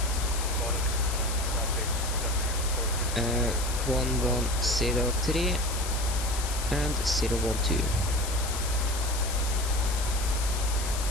1103 and 012.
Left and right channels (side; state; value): left; noise; hiss, 7 dB below the sound